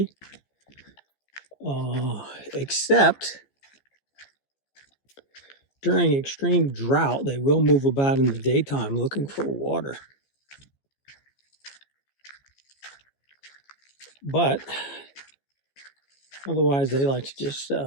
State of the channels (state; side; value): late; right; 14 ms